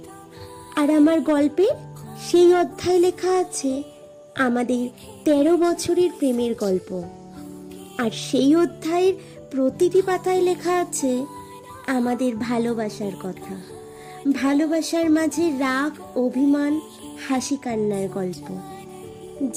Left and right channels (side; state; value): both; identical; correlation 1.00